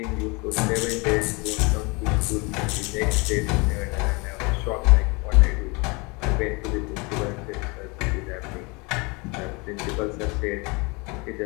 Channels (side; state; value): right; quieter; 28.2 dB